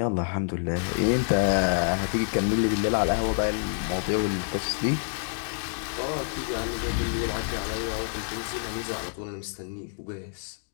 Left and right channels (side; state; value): right; silent; digital silence